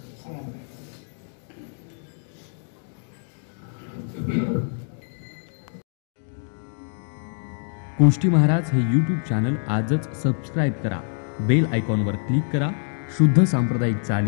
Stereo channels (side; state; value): right; silent; digital silence